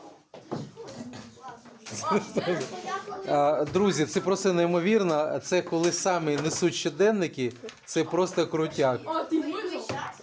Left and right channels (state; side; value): identical; both; correlation 1.00